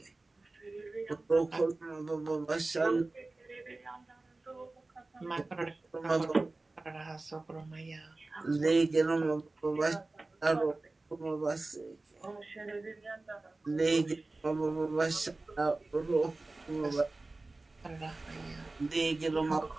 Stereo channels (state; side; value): quieter; left; 3.2 dB